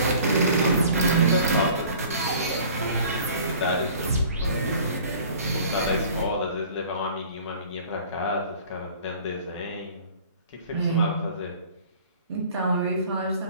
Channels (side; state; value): both; inverted; correlation -0.49